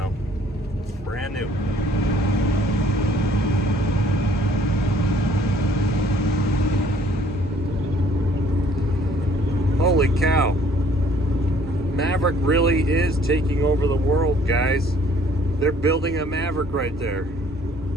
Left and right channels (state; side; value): normal; both; correlation 0.59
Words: Brand new. Holy cow. Maverick really is taking over the world, guys. They're building a Maverick right there.